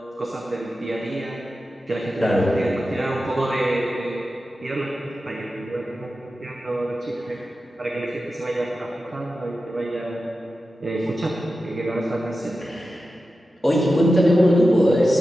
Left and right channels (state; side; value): normal; both; correlation 0.92